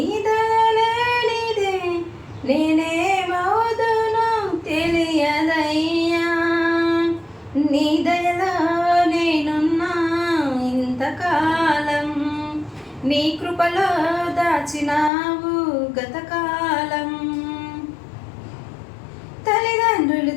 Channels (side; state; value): right; drops out; at 15.1 s